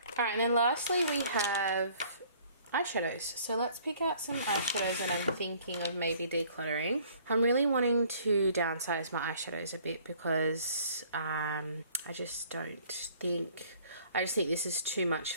Alright, and then lastly we have eyeshadows. So let's pick out some eyeshadows that I'm thinking of maybe decluttering. I'm really wanting to downsize my eyeshadows a bit because I just think this is too much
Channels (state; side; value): inverted; both; correlation -0.56